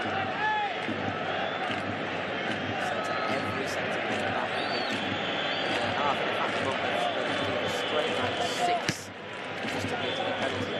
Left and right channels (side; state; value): both; identical; correlation 1.00